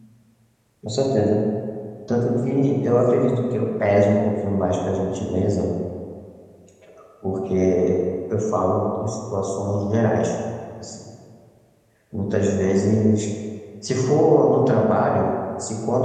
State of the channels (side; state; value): both; identical; correlation 1.00